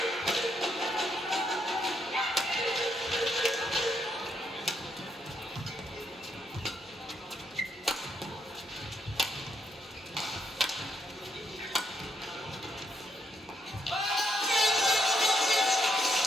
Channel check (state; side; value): normal; both; correlation 0.77